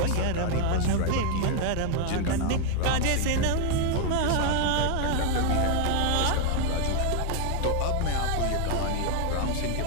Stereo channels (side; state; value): both; different; correlation 0.01